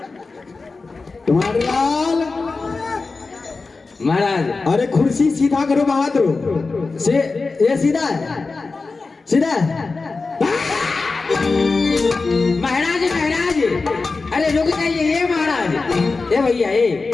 तुम्हारे लाल महाराज अरे कुर्सी सीधा करो बहादुर से। ये सीधा है, सीधा है। महाराज महाराज अरे रुक जाइए। ये महाराज ये भैया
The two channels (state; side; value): quieter; right; 4.0 dB